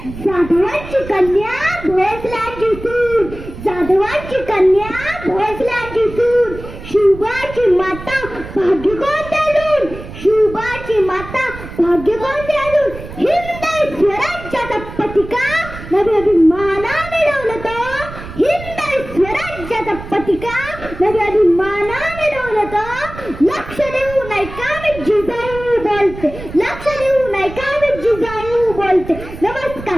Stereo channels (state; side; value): noise; right; rumble, 13 dB below the sound